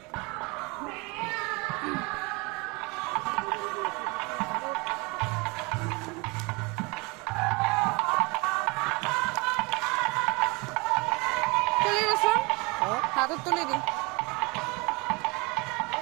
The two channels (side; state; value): left; quieter; 27.4 dB